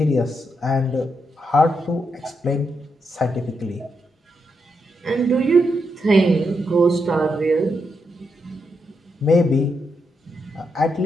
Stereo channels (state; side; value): normal; both; correlation 0.82